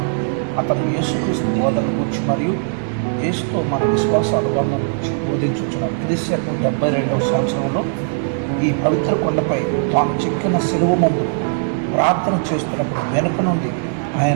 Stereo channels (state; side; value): silent; left; 60 dB below the other